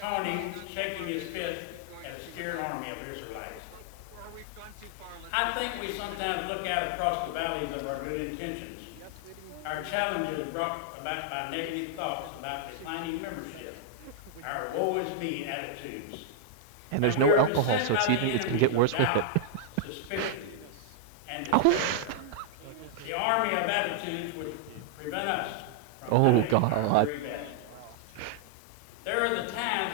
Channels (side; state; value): both; different; correlation 0.00